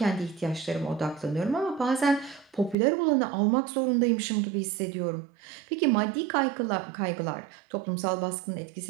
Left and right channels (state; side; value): drops out; left; at 2.8 s